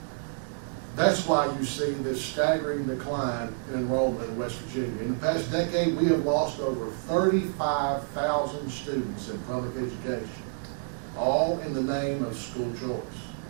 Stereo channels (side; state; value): left; silent; digital silence